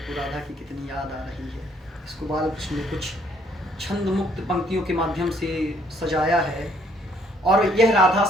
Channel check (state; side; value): normal; both; correlation 0.66